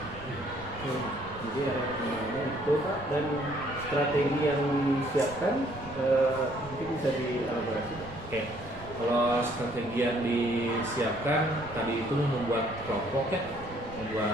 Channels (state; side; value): noise; right; rumble, 16 dB below the sound